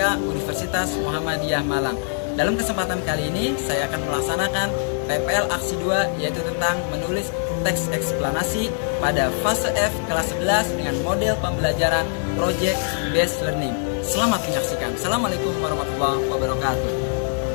Universitas Muhammadiyah Malang. Dalam kesempatan kali ini saya akan melaksanakan PPL aksi 2, yaitu tentang menulis teks eksplanasi pada fase F kelas 11 dengan model pembelajaran Project Based Learning. Selamat menyaksikan. Assalamualaikum warahmatullahi wabarakatuh.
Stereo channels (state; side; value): silent; right; digital silence